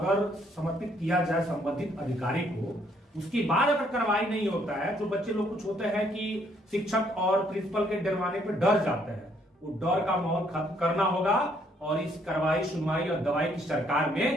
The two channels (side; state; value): both; normal; correlation 0.68